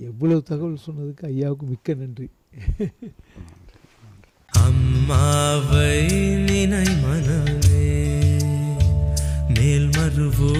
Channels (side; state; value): both; identical; correlation 1.00